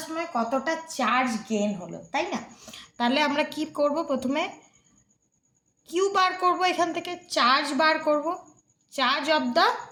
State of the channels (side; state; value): both; identical; correlation 1.00